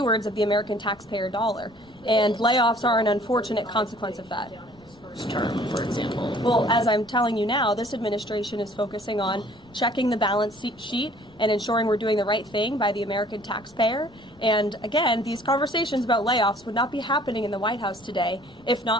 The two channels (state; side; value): noise; left; rumble, 27 dB below the sound